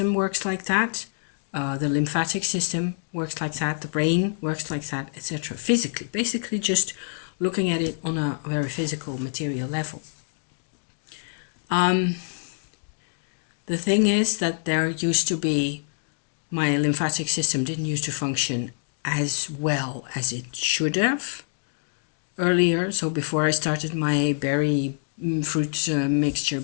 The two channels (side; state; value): right; silent; digital silence